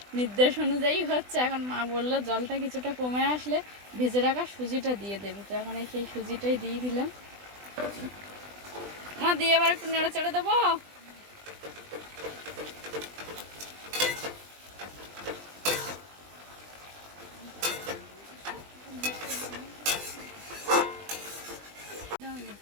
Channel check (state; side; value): late; left; 20 ms